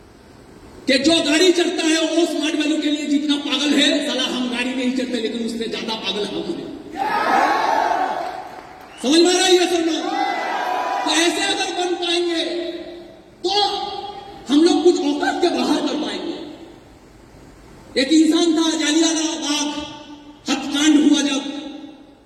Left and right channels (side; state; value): both; identical; correlation 1.00